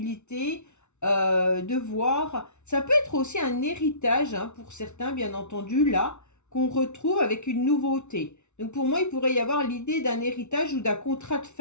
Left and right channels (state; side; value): late; right; 0.82 ms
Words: de voir. Ça peut être aussi un héritage, hein, pour certains, bien entendu, là, qu'on retrouve avec une nouveauté. Donc, pour moi, il pourrait y avoir l'idée d'un héritage ou d'un contrat de